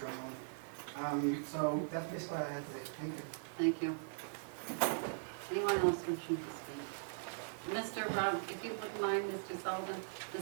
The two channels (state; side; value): silent; left; digital silence